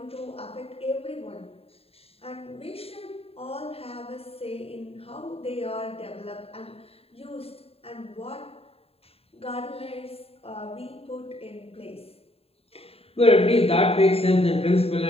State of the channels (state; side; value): late; right; 0.28 ms